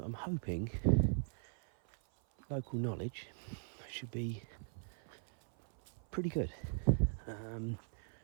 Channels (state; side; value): silent; left; 51 dB below the other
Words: hoping local knowledge should be pretty good.